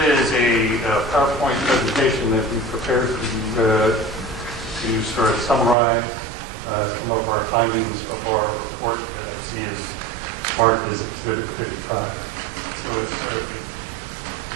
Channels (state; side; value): drops out; left; at 5.8 s